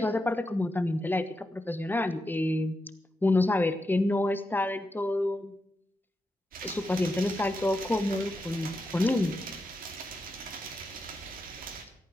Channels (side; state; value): both; normal; correlation 0.87